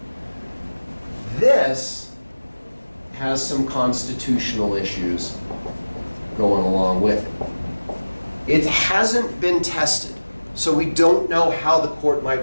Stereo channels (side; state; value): both; inverted; correlation -1.00